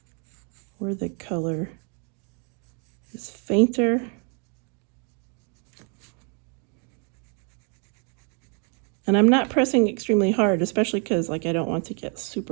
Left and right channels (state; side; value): quieter; left; 38.6 dB